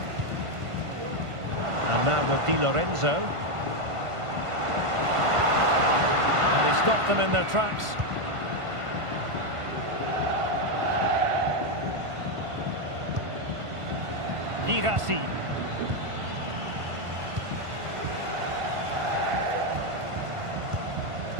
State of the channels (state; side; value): late; left; 1.5 ms